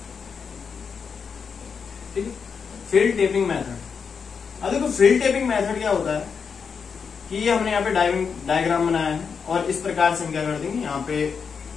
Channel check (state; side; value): quieter; right; 6.1 dB